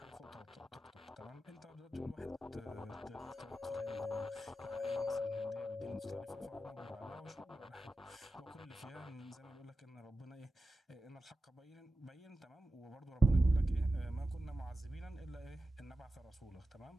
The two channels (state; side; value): normal; both; correlation 0.92